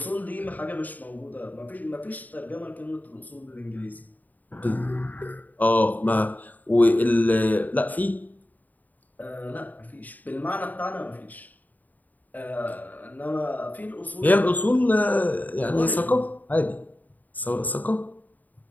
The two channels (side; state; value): right; late; 0.081 ms